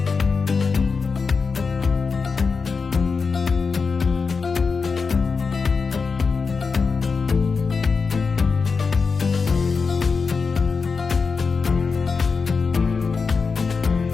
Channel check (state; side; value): quieter; right; 4.9 dB